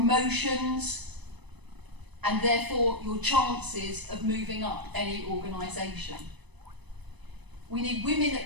and therefore your chances of moving up any organisation. We need women at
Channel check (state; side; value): late; left; 1.0 ms